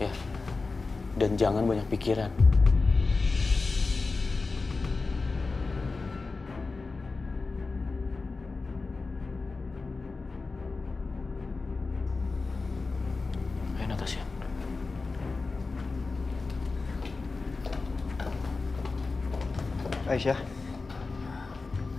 Ya. Dan jangan banyak pikiran. Ayo, Natasha. Aisyah,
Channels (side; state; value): right; quieter; 3.9 dB